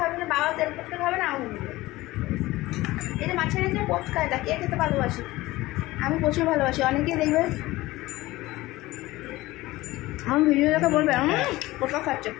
না, বাবা তেল পটকা খাবে না আমি দেবে। এই যে মাছের এই যে পটকা, এটা কে খেতে ভালোবাসি? আমি প্রচুর ভালোবাসি। অনেকেই দেখবে আমার ভিডিও দেখে বলবে পটকা খাচ্ছে,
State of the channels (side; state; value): right; quieter; 18.5 dB